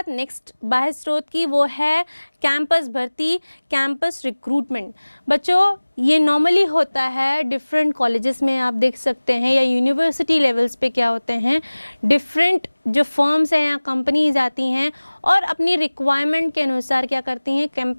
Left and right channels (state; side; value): inverted; both; correlation -1.00